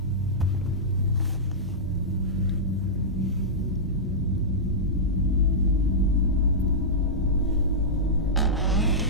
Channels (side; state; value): both; normal; correlation -0.13